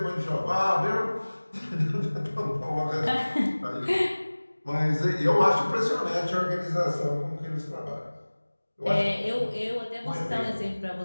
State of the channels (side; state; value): both; inverted; correlation -1.00